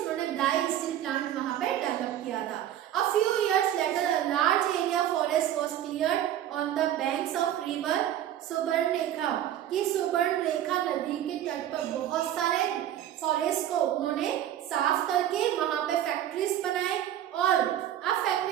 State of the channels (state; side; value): quieter; left; 11.5 dB